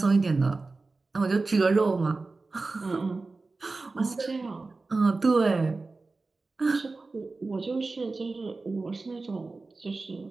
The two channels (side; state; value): left; quieter; 3.6 dB